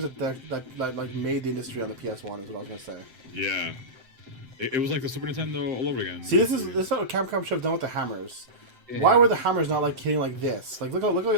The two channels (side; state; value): left; late; 7.7 ms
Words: that like made the industry on the PS1. Is what I was gonna say. Yeah, it was like the Super Nintendo all over again. See, this is what Capcom should have done with the hammers. yeah. Why were the hammers not like hitting like this? Like look